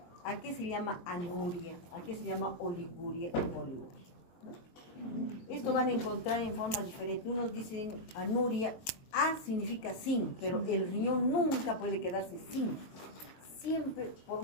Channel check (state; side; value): late; right; 23 ms